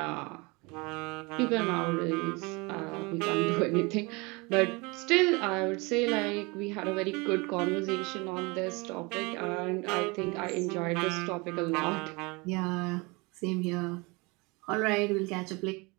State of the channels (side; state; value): left; quieter; 26.8 dB